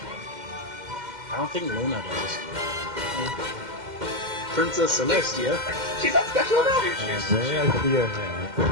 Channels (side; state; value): left; late; 2.1 ms